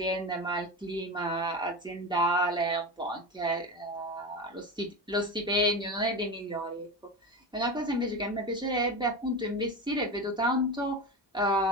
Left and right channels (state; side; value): normal; both; correlation 0.23